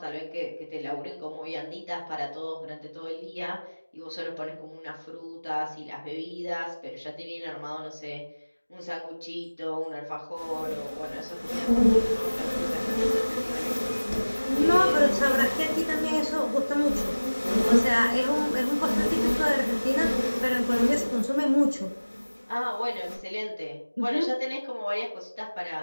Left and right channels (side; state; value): both; inverted; correlation -1.00